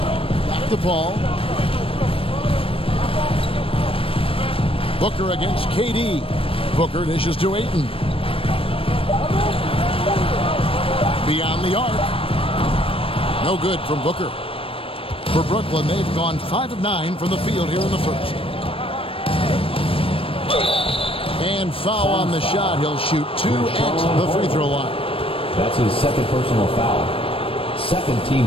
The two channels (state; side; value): late; right; 0.27 ms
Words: Back to Paul. Booker against KD. Booker dishes to Ayton. Beyond the arc. No good from Booker. For Brooklyn, they've gone 5 of 9 from the field here in the first. And foul on the shot. He'll shoot 2 at the free throw line. That's his second personal foul. Second